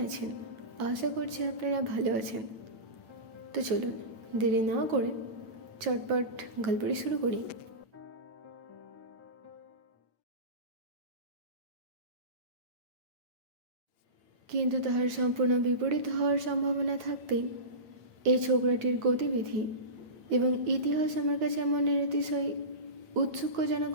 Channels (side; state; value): left; late; 8.9 ms